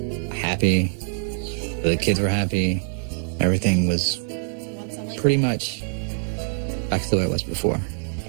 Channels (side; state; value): left; silent; 63 dB below the other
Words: happy. The kids were happy. Everything was pretty much back to the way it was before.